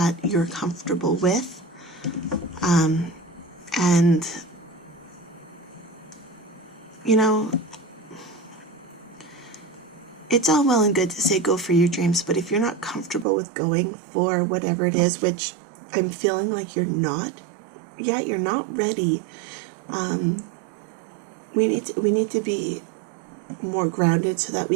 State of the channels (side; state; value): left; drops out; at 13.2 s